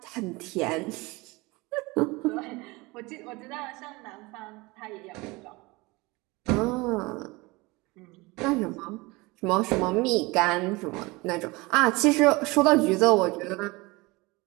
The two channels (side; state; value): left; quieter; 23.7 dB